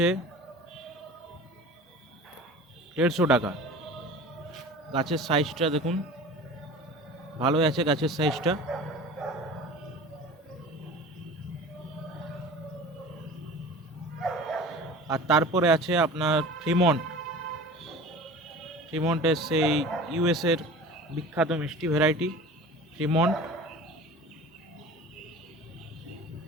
150 টাকা। গাছের সাইজটা দেখুন, ভালোই আছে গাছের সাইজটা। আর তারপরে আছে আপনার ফ্রিমন্টের সেই ইউএসের বিখ্যাত মিষ্টি ভ্যারাইটি ফ্রিমন্ট।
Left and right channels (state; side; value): normal; both; correlation 0.39